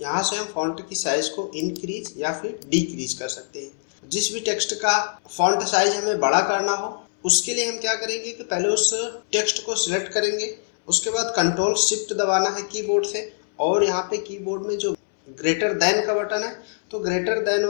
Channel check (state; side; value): silent; right; 63 dB below the other